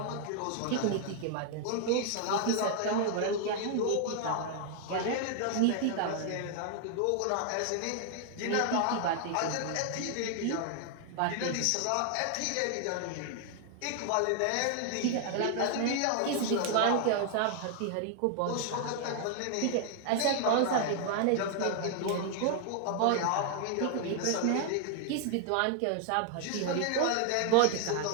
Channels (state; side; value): different; both; correlation 0.00